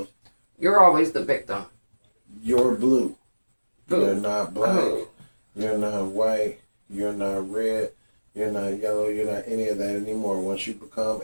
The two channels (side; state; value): both; inverted; correlation -1.00